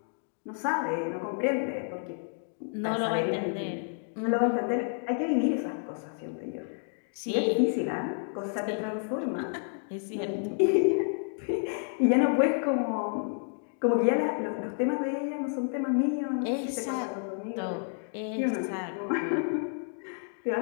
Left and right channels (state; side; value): silent; right; 58 dB below the other